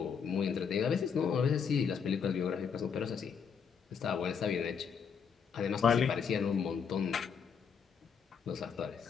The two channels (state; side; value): quieter; right; 6.6 dB